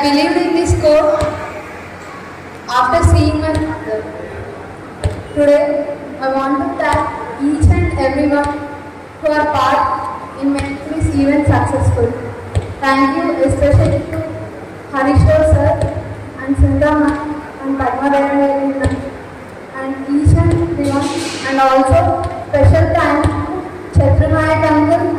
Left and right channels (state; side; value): identical; both; correlation 1.00